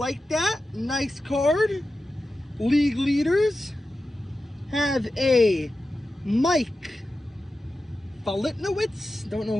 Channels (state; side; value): normal; both; correlation 0.92